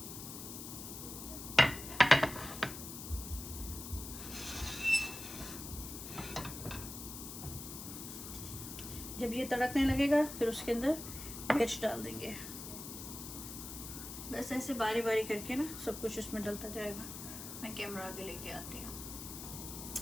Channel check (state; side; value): noise; left; hiss, 9 dB below the sound